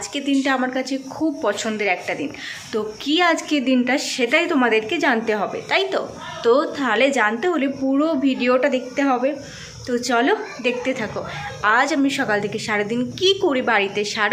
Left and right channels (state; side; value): identical; both; correlation 1.00